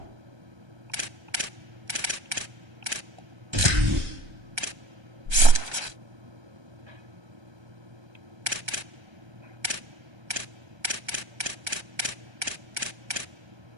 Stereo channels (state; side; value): late; left; 1.3 ms